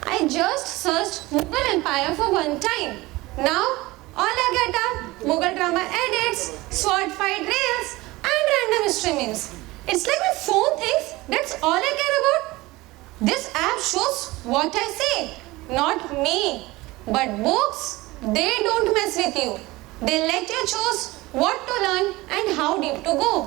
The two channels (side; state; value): left; quieter; 20.4 dB